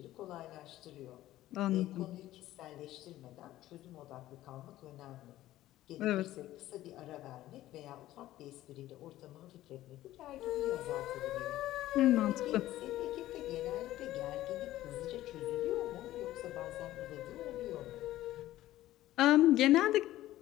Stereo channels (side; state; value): right; quieter; 14.9 dB